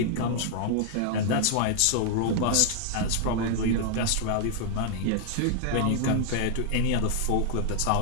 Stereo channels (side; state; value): both; different; correlation 0.00